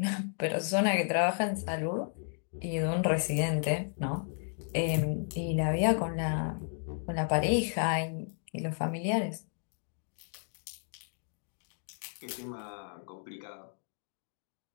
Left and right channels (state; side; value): silent; right; digital silence